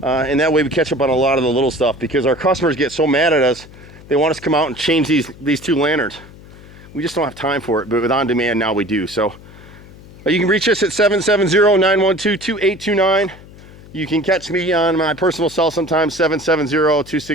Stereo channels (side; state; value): left; noise; hum, 20 dB below the sound